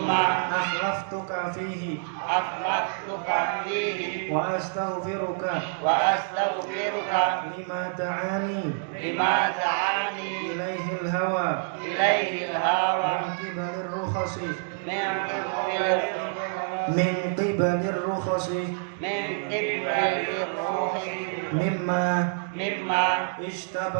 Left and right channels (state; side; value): silent; left; digital silence